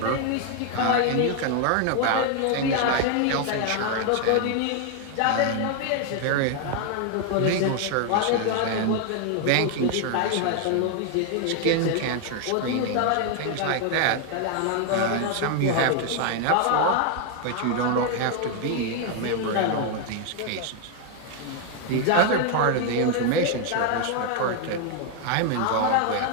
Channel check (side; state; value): both; different; correlation 0.00